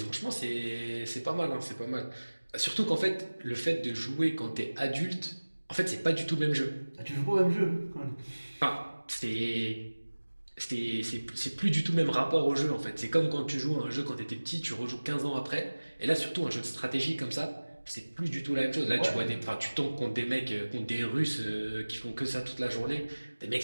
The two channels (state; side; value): inverted; both; correlation -1.00